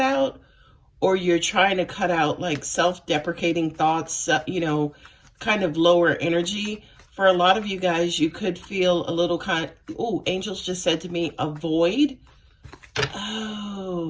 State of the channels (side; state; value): both; identical; correlation 1.00